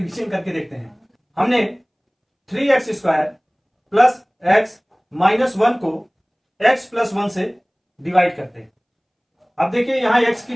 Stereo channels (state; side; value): identical; both; correlation 1.00